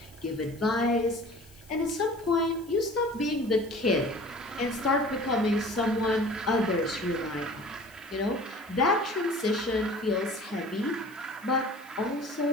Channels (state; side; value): noise; left; hiss, 26 dB below the sound